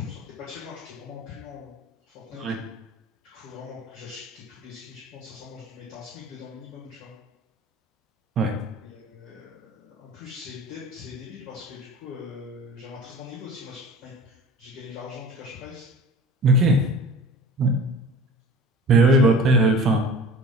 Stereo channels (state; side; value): normal; both; correlation 0.41